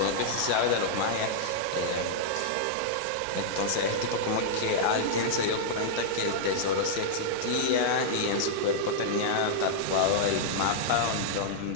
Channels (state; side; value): different; both; correlation -0.02